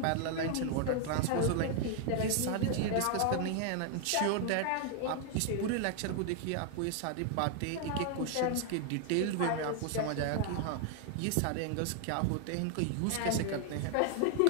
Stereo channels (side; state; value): both; different; correlation 0.00